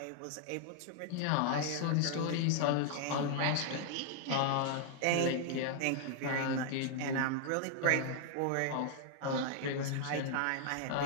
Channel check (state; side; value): different; both; correlation 0.00